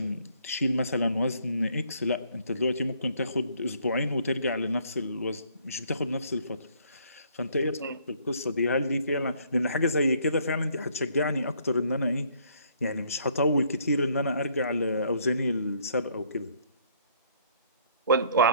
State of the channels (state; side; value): inverted; both; correlation -0.64